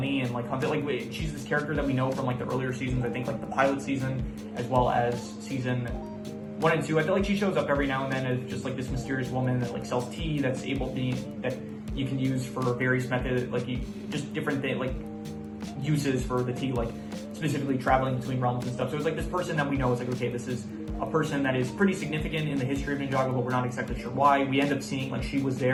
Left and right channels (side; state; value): both; identical; correlation 1.00